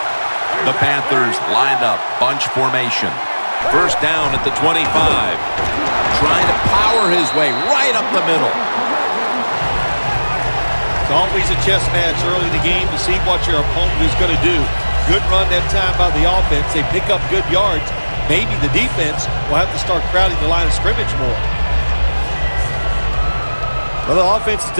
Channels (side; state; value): both; inverted; correlation -1.00